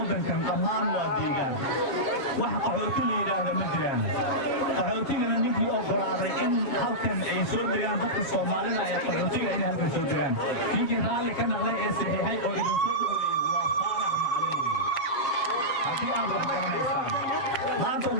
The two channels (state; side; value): late; right; 7.4 ms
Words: dhammaan waa deegaan wax qaxooti la yiraahdo ma jiraan qaxootigana ninkii ogolaaday in halkan ay soo degaan dadka Soomaalida ay qaxootiga inay halkan soo degaan ninkii raalli ka noqday ee saxiixay oo idin soo maanta